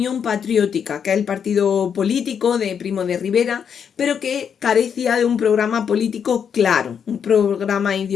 Patriótica, que es el partido político de Primo de Rivera, pero que carecía de un programa político claro, un programa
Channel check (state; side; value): quieter; right; 7.5 dB